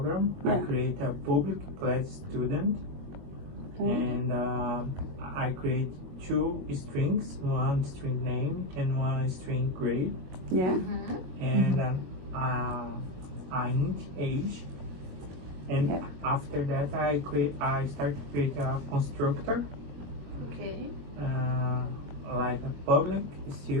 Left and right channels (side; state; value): left; late; 22 ms